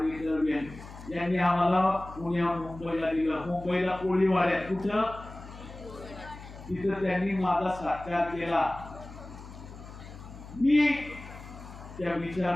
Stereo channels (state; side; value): noise; left; hum, 15 dB below the sound